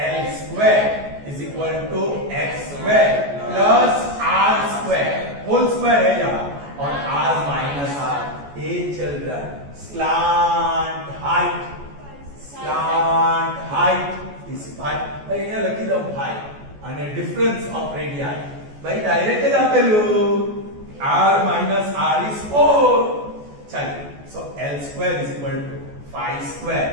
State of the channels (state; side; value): late; left; 14 ms